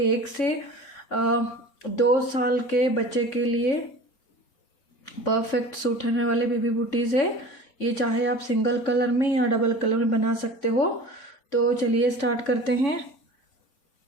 1 से 2 साल के बच्चे के लिए परफेक्ट सूट होने वाले बेबी ब्यूटीज़ है ये। चाहे आप सिंगल कलर में या डबल कलर में बना सकते हो। तो चलिए स्टार्ट करते हैं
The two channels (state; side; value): late; right; 3.6 ms